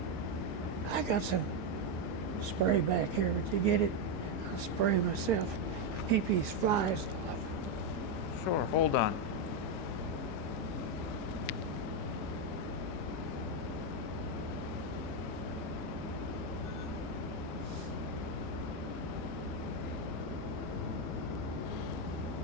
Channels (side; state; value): both; normal; correlation 0.05